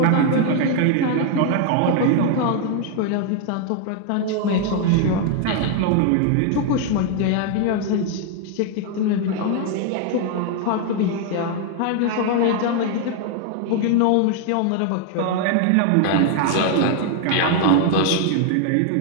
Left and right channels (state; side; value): different; both; correlation 0.00